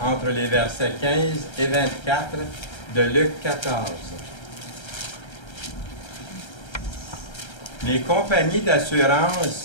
les versets 15 et 24 de Luc 14. Les compagnies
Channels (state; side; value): late; right; 1.3 ms